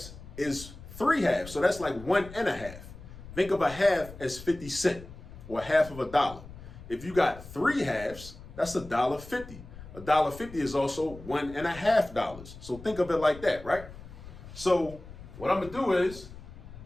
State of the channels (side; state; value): left; noise; rumble, 15 dB below the sound